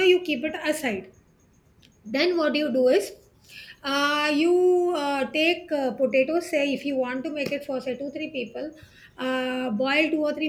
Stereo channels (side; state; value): both; identical; correlation 1.00